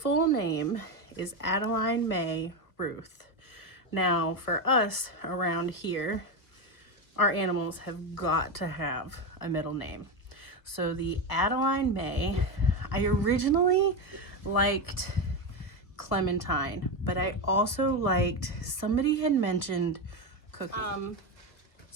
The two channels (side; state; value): right; late; 1.3 ms